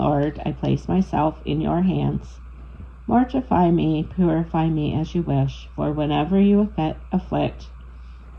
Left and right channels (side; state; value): both; identical; correlation 1.00